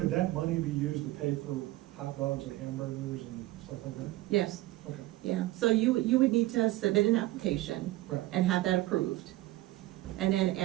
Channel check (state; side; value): quieter; left; 17.5 dB